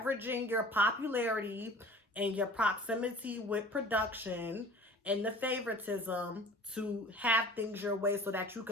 your popularity and your proximity with production and the favoritism to have things your way so that you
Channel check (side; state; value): both; normal; correlation 0.44